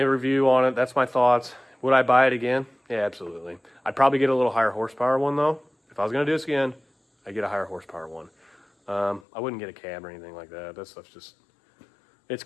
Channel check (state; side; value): drops out; right; at 9.2 s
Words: review on it. That's my thoughts. Would I buy it again? Yeah, absolutely. I'd probably get a little higher horsepower one, though. If I was going to do this again, I'd get a higher horsepower one. I wouldn't get a cab or anything like that. That stuff's just, it's